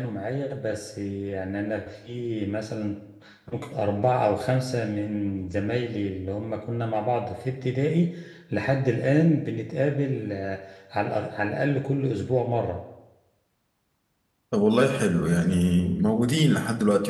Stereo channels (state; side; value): identical; both; correlation 1.00